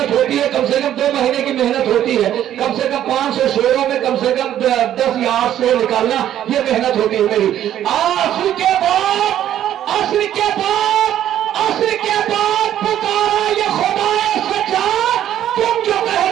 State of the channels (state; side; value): quieter; left; 11.3 dB